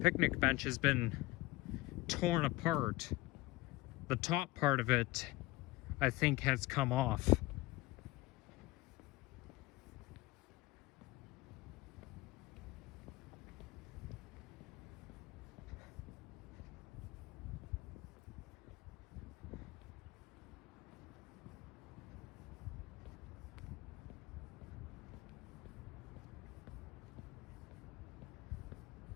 bench has been torn apart. The top part of it, I think, has come off.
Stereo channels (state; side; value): quieter; right; 19.6 dB